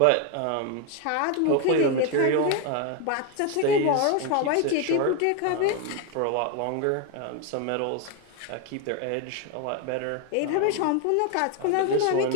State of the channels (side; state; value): both; different; correlation 0.02